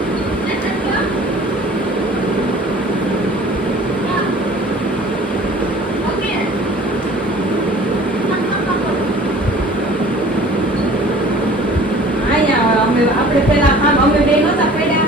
આપણે પેલા આમ અમે બે નહોતા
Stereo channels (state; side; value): normal; both; correlation 0.48